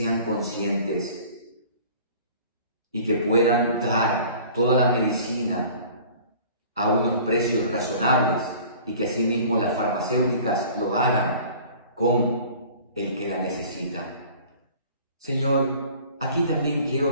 conscientes y que puedan dar toda la medicina a unos precios razonables, y que asimismo las farmacéuticas lo hagan con el que la necesita. Señor, aquí también quiero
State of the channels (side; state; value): both; inverted; correlation -0.47